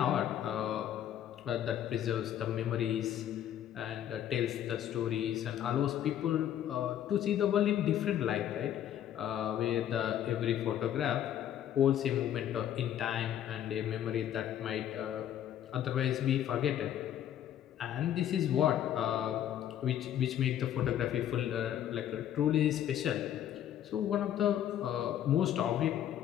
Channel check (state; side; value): quieter; right; 10.8 dB